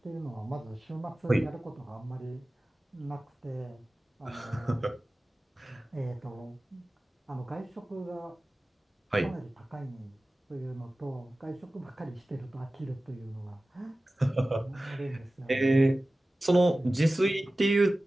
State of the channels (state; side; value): normal; both; correlation 0.96